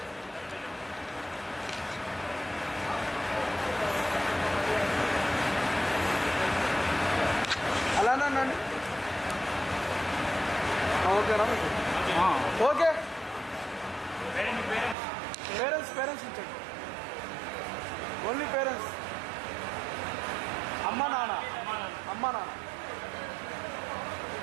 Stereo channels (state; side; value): drops out; left; at 15.0 s